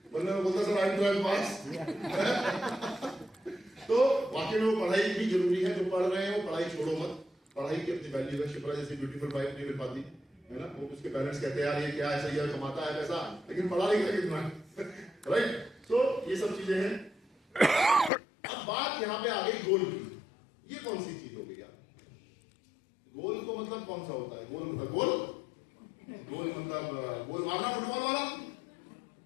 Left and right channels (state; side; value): drops out; right; at 18.1 s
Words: वरना मैं बोलता सर आई एम 12th पास। तो वाकई में वो पढ़ाई भी जरूरी है, जो पढ़ रहे हैं वो पढ़ाई छोड़ो मत, पढ़ाई की अपनी वैल्यू है। शिप्रा जैसी ब्यूटीफुल वाइफ नहीं मिल पाती है ना, वो उसके पेरेंट्स कहते हैं यार ये क्या है, सही है कमाता है पैसा, लेकिन पढ़ा लिखा कितना है, राइट। तो ये सब चीजें हैं। अब बात यहाँ पे आ गई गोल की, ये कौन सी चीज हो गई यार, गोल को मतलब कौन सा होता है, गोल मतलब गोल, गोल मतलब गोल मारना फुटबॉल वाला